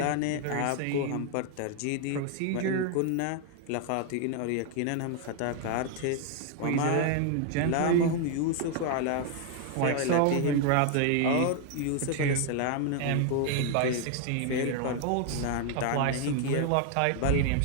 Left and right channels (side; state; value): both; different; correlation 0.00